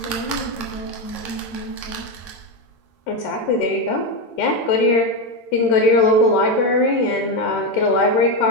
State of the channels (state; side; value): late; right; 13 ms